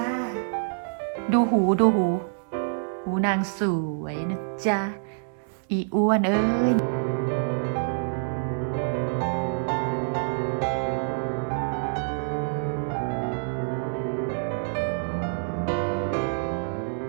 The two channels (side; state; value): left; silent; digital silence